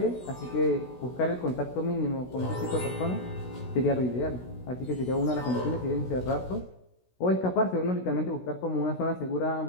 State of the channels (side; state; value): right; late; 16 ms